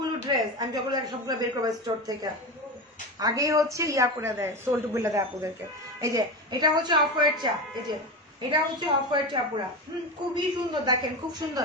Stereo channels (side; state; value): both; normal; correlation 0.22